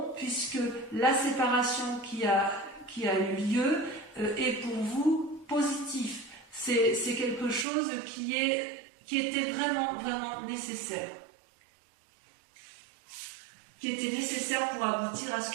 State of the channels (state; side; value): drops out; left; at 7.7 s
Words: puisque la séparation qui a eu lieu est pour vous positif. C'est quelque chose qui était vraiment, vraiment nécessaire. Qui était nécessaire pour aboutir à